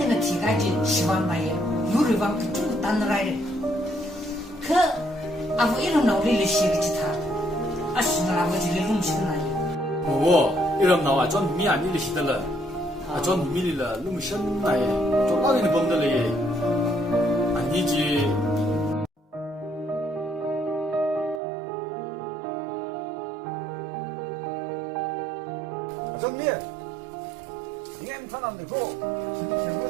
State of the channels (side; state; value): left; drops out; at 21.4 s